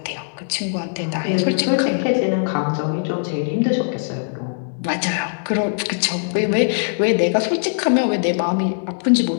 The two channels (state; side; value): silent; right; digital silence